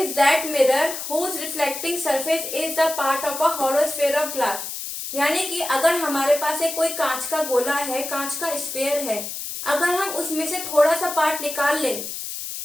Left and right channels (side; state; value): left; noise; hiss, 7 dB below the sound